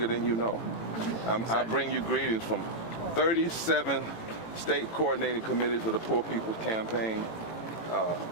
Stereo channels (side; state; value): right; late; 18 ms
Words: than you know. I bring you greetings from 37 state coordinating committees of the Poor People's Campaign,